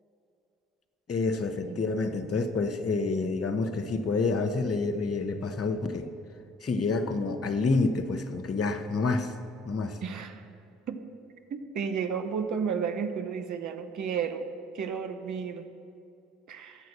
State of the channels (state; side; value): normal; both; correlation 0.56